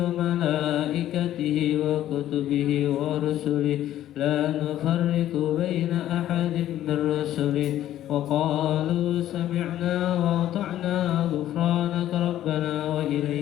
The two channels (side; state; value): right; quieter; 12.6 dB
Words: وملائكته وكتبه ورسله لا نفرق بين أحد من رسله وقالوا سمعنا وأطعنا غفرانك ربنا